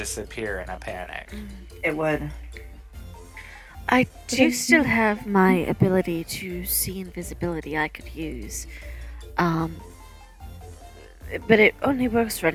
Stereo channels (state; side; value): identical; both; correlation 1.00